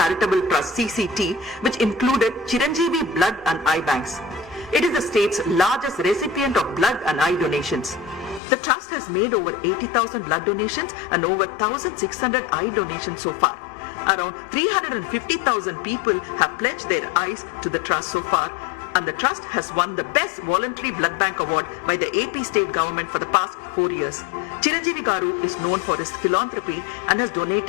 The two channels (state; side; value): drops out; right; at 8.4 s